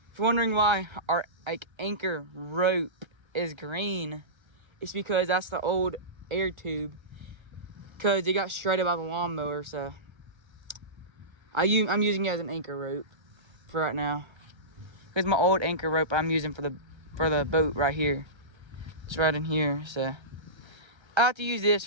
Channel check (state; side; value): late; left; 1.3 ms